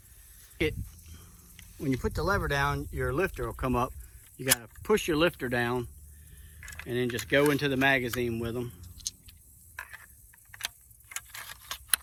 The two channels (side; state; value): both; identical; correlation 1.00